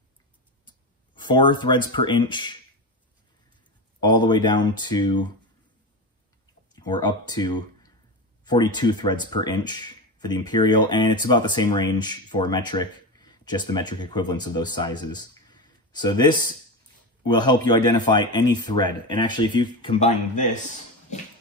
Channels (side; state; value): both; normal; correlation 0.21